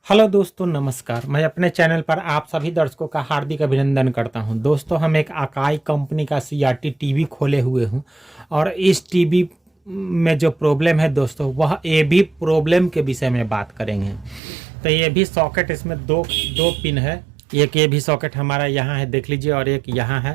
Hello दोस्तों, नमस्कार। मैं अपने चैनल पर आप सभी दर्शकों का हार्दिक अभिनंदन करता हूं। दोस्तों, हम एक अकाई कंपनी का सीआरटी टीवी खोले हुए हूं और इस टीवी में जो प्रॉब्लम है दोस्तों, वह ए भी प्रॉब्लम के विषय में बात करेंगे। तो ये भी सॉकेट, इसमें दो पिन है। एक ये भी सॉकेट हमारा यहाँ है, देख लीजिए, और एक यहाँ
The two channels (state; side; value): drops out; left; at 14.4 s